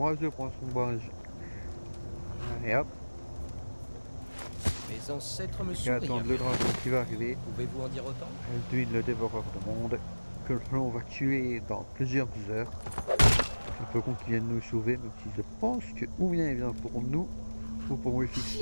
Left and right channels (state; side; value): inverted; both; correlation -1.00